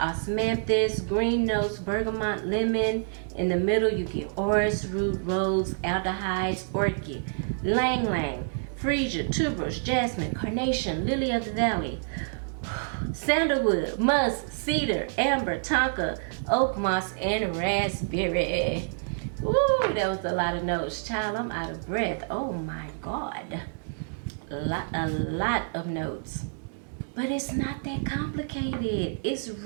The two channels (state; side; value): silent; left; digital silence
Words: green notes, bergamot, lemon. In the middle, you get orris root, rose, aldehydes, orchid, lang lang, freesia, tuberose, jasmine, carnation, lily of the valley, sandalwood, musk, cedar, amber, tonka, oak moss, and raspberry. Ooh, that was a lot of notes. Child, I'm out of breath. Oh my God. A lot of notes. But it's not that complicated. It's